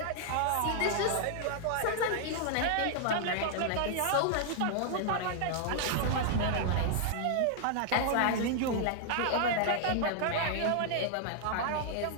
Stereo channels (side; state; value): both; different; correlation -0.01